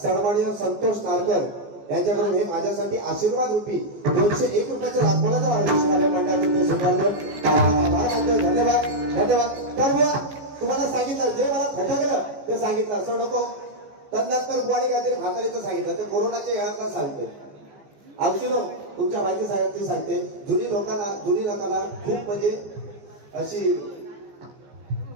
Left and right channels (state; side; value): late; left; 14 ms